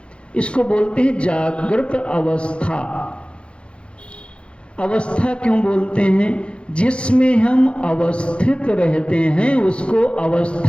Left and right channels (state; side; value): late; right; 0.058 ms